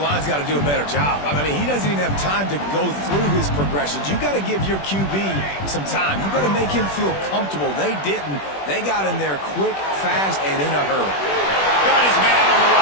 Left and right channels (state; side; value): late; right; 21 ms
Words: got to do a better job. I mean, he doesn't even have time to go through his progressions. You got to give your QB some time. You got to make him feel comfortable. They didn't. They got in there quick, fast, and in a hurry. Got his man on the